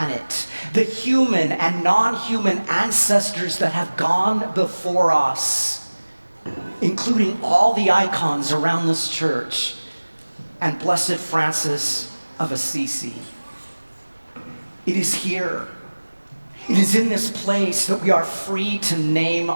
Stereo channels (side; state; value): both; inverted; correlation -1.00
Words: the human and non-human ancestors that have gone before us, including all the icons around this church, and Blessed Francis of Assisi. It is here. It is in this place that we are free to name